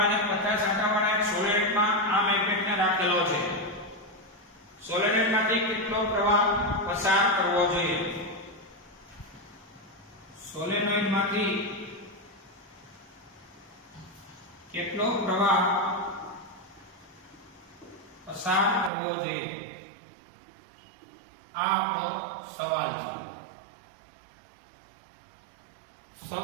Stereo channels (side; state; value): left; drops out; at 18.9 s